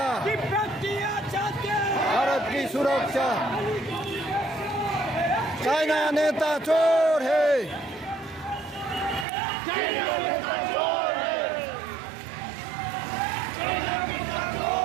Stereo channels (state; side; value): drops out; left; at 9.2 s